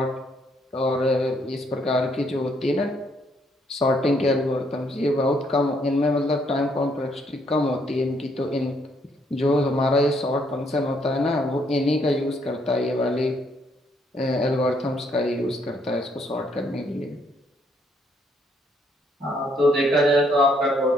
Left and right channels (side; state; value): both; normal; correlation 0.70